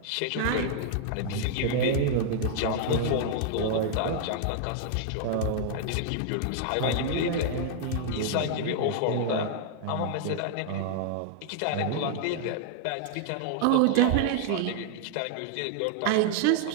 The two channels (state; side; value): different; both; correlation -0.01